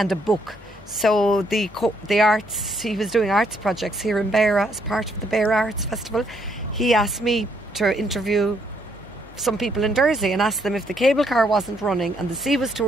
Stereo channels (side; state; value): both; normal; correlation 0.71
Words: a book. So the arts, he was doing arts projects here in Beara as part of the Beara Arts Festival. He asked me to interview some people in Dursey and asked them if the cable car wasn't running and the sea was too